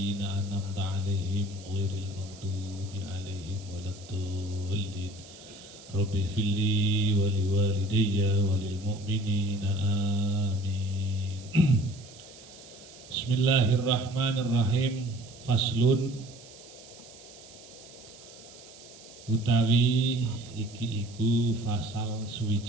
an'amta 'alaihim ghairil maghdubi 'alaihim waladdallin. Rabbi firli wa liwalidayya wa lil mu'minina amin. Bismillahirrahmanirrahim. Faslun utawi iki iku fasal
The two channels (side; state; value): right; noise; hiss, 20 dB below the sound